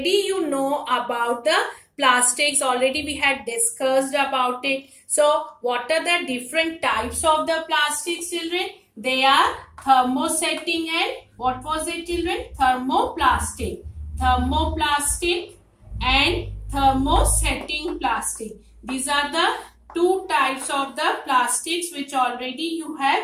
you know about the plastics, already we had discussed about it. So what are the different types of the plastics, children? They are thermosetting and what was it, children? Thermoplastic. Thermoplastic and thermosetting plastic. These are the two types of the plastics which already you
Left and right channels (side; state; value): both; identical; correlation 1.00